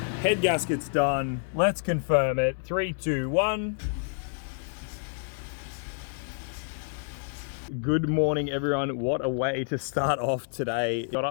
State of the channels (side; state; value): right; silent; 59 dB below the other